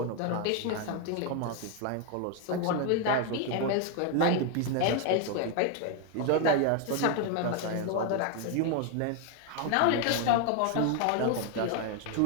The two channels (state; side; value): different; both; correlation 0.01